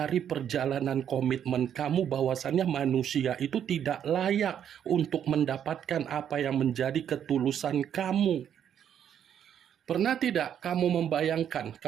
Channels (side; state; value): left; quieter; 9.2 dB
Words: perjalanan komitmen kamu bahwasannya manusia itu tidak layak untuk mendapatkan apa yang menjadi ketulusan kamu. Pernah tidak kamu membayangkan